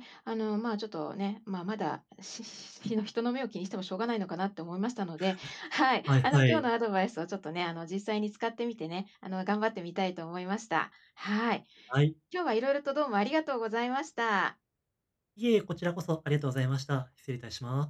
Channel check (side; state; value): both; identical; correlation 1.00